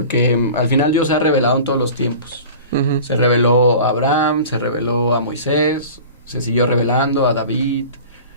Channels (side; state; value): both; inverted; correlation -0.39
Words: al final Dios se ha revelado en todos los tiempos. Se reveló a Abraham, se reveló a Moisés, se siguió revelando a David